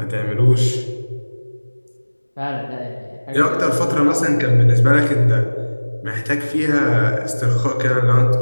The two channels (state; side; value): inverted; both; correlation -1.00